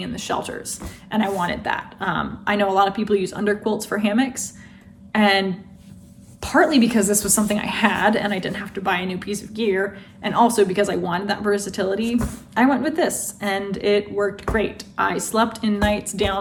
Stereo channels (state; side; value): identical; both; correlation 1.00